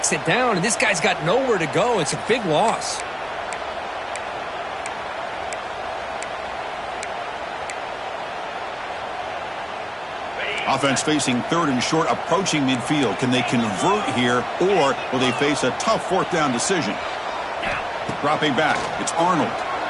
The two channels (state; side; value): identical; both; correlation 1.00